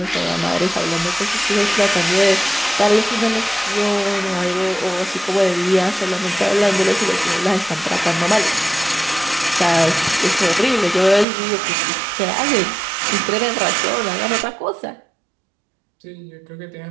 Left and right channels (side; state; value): left; drops out; at 11.2 s